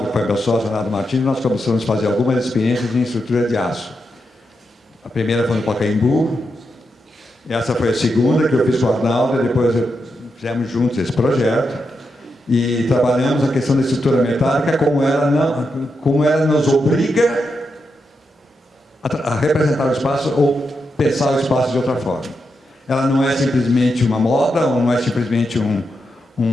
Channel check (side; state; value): both; normal; correlation 0.85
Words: que foi meu sócio, Arnaldo Martins, nós começamos a fazer algumas experiências em estrutura de aço. A primeira foi no Pacaembu, essa foi a segunda que eu fiz com o Arnaldo, e depois fizemos juntos esse projeto, e trabalhamos a questão da estrutura metálica, como ela nos obriga a representar o espaço ou pensar o espaço de outra forma. Ela não é simplesmente uma moda, ou não é simplesmente um